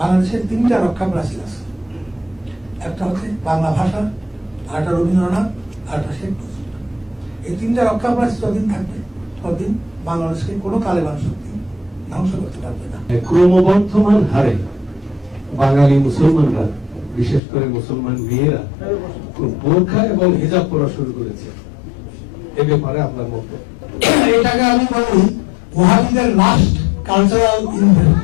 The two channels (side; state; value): right; drops out; at 17.4 s